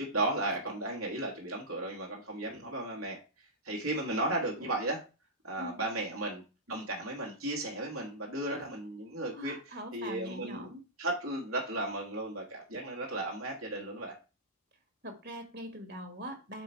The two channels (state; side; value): normal; both; correlation -0.13